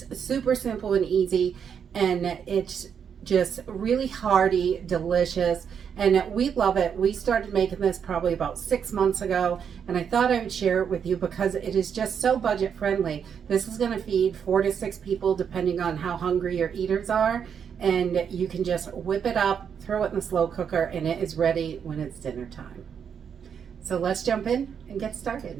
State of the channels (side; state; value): left; quieter; 7.5 dB